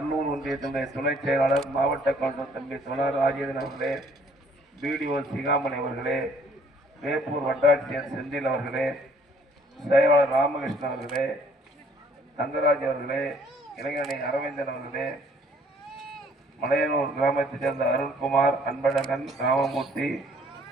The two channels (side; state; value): both; normal; correlation 0.60